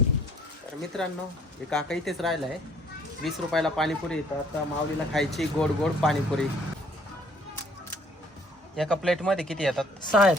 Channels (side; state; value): both; normal; correlation 0.60